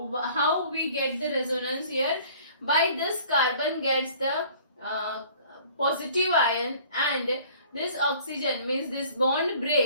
How we get the resonance here? By this carbon gets the uh, positive ion, and this oxygen means this bond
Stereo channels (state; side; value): inverted; both; correlation -0.51